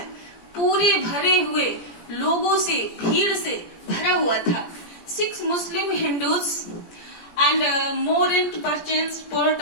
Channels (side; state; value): right; late; 17 ms